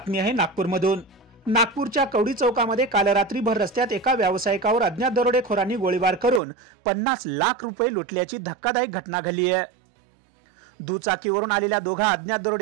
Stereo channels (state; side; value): drops out; left; at 6.4 s